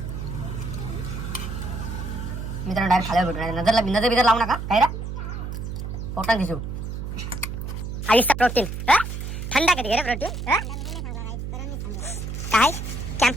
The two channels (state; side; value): noise; right; hum, 6 dB below the sound